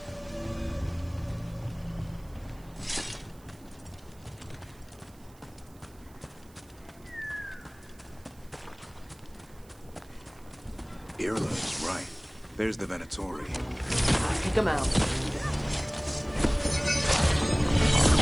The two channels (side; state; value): right; noise; hiss, 27 dB below the sound